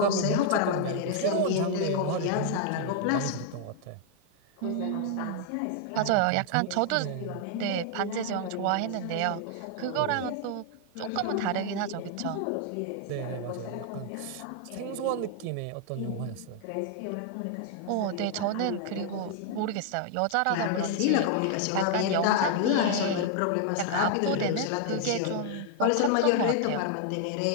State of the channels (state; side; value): different; both; correlation 0.00